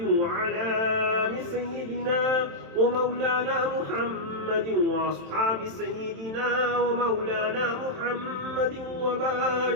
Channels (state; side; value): late; left; 27 ms